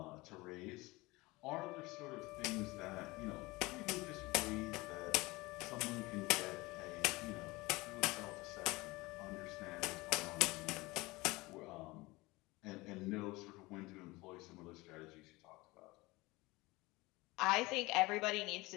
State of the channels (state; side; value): quieter; right; 22.0 dB